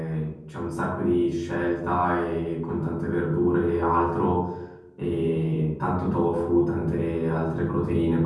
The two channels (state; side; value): identical; both; correlation 1.00